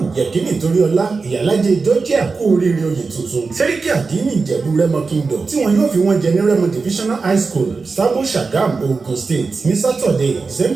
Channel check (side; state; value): left; quieter; 4.4 dB